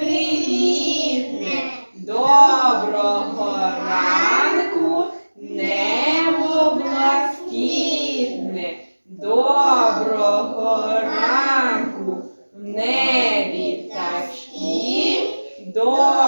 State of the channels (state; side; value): inverted; both; correlation -1.00